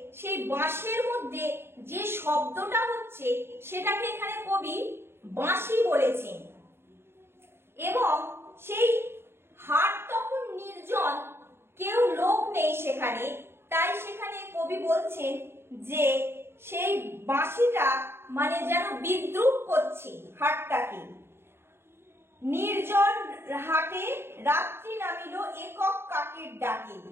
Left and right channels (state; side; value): late; left; 0.11 ms